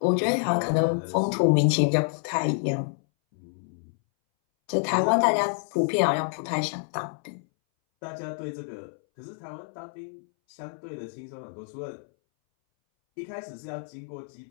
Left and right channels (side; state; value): right; silent; 60 dB below the other